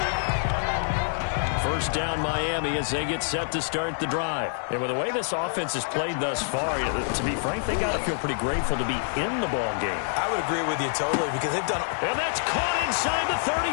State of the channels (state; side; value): silent; right; digital silence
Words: 1st down Miami as they get set to start the drive. And with the way this offense has played thus far, to be frank, they got to feel pretty grateful to be in the ball game. I would agree with you totally because they've done... And that's caught inside the